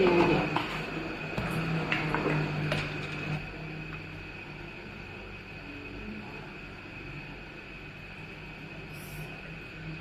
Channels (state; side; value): identical; both; correlation 1.00